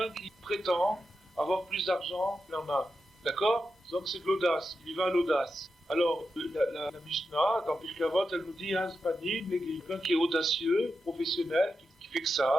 qui prétend avoir plus d'argent qu'il en a. D'accord? Donc c'est de l'audace, il y va à l'audace. Alors, la Mishnah, dans Pirkei Avot, elle nous dit, quelqu'un qui est audacieux, professionnel, qui fait que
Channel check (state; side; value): normal; both; correlation 0.88